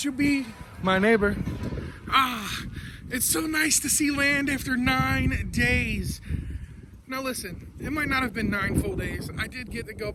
you be my neighbor? Ah, it's so nice to see land after 9 days. Now listen, it might not have been 9 full days. I did get to go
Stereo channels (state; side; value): identical; both; correlation 1.00